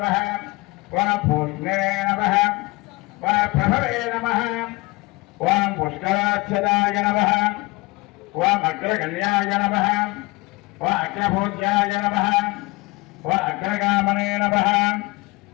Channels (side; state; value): right; quieter; 23.1 dB